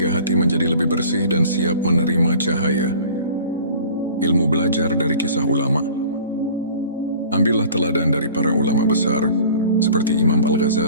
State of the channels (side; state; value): both; inverted; correlation -0.45